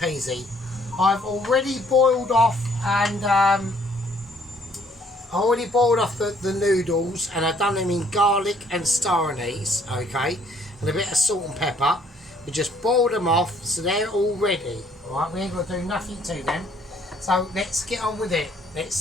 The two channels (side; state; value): both; normal; correlation 0.63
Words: I've already boiled off the noodles, and I've done them in garlic and star anise, okay, and a bit of salt and pepper. We just boiled them off, so they're all ready. Alright, we ain't got to do nothing to them. So let's get on with it. Let's